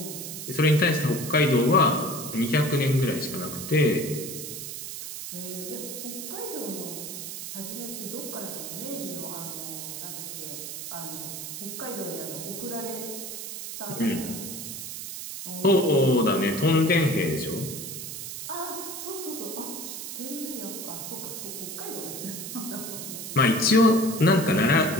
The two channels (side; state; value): right; noise; hiss, 7 dB below the sound